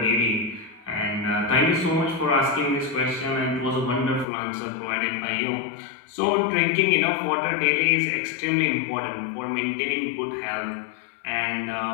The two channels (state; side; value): drops out; right; at 4.2 s